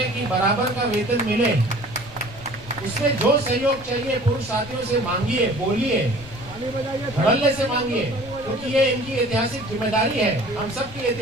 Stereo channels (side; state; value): left; noise; rumble, 17 dB below the sound